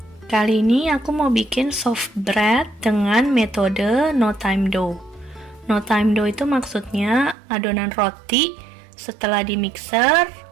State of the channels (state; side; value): drops out; left; at 7.4 s